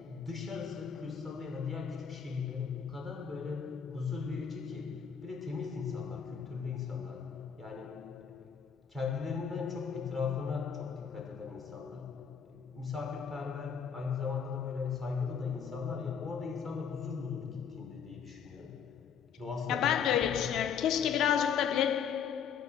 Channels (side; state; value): right; quieter; 7.1 dB